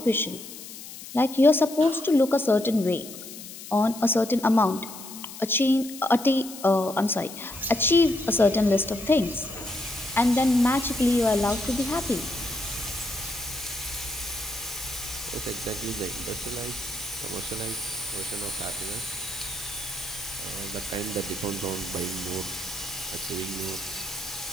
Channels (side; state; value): left; noise; hiss, 13 dB below the sound